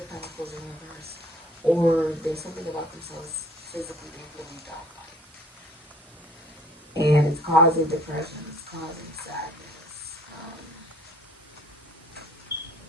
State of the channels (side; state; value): both; normal; correlation 0.56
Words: Pentacles in reverse, or there's something about themselves physically they really don't like. And it's causing depression, it's causing sadness,